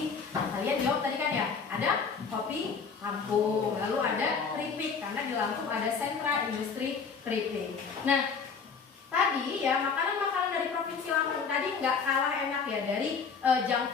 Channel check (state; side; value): quieter; right; 5.6 dB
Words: Kalian jawab tadi kan ya. Ada kopi Lampung, lalu ada keripik karena di Lampung ada sentra industri keripik. Nah, tadi ya makanan-makanan dari Provinsi Lampung tadi nggak kalah enak ya dari junk